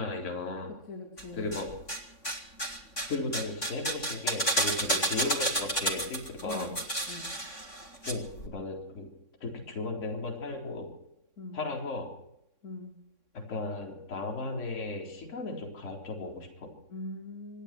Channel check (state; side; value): late; right; 3.6 ms